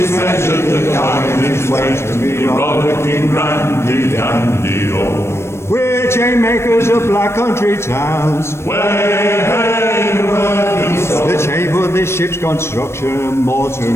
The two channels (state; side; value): late; right; 0.13 ms